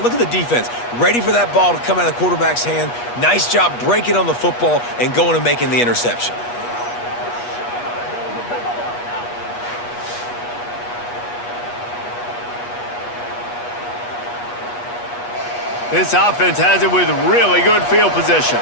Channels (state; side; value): late; right; 8.3 ms